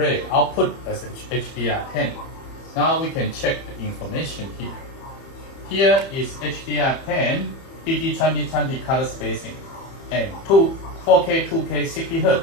output as HDR10. Now we can check the information here. Here is HDR10 DT2020 color spacing and 4K 2K 60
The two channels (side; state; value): right; late; 30 ms